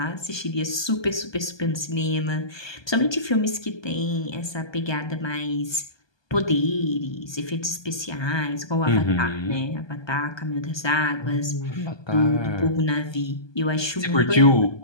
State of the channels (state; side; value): late; right; 1.2 ms